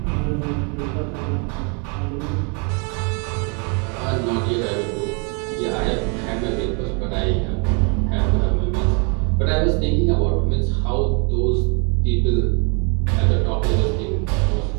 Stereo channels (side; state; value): left; quieter; 35.5 dB